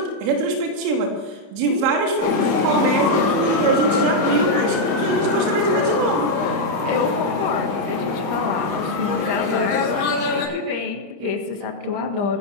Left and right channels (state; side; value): late; left; 30 ms